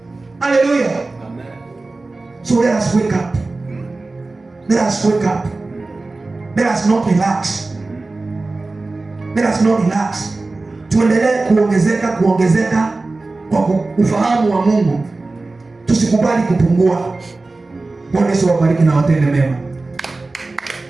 Haleluya. So let us wake up. Let us wake up. Let us not relax. Let us not relax. Tuendelee kuongezeka kwa ufahamu wa Mungu. Tusikubali kupungua. Bwana Yesu awabariki na watende mema.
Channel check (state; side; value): quieter; left; 3.4 dB